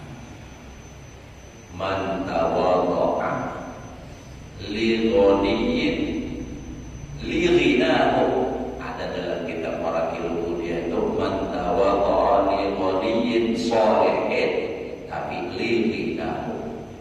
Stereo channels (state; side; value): identical; both; correlation 1.00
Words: man tawadha'a li ghaniyin li ghinahu. Ada dalam kitab Marakil Mulia itu man tawadha'a li ghaniyin shalihin, tapi li ghinahu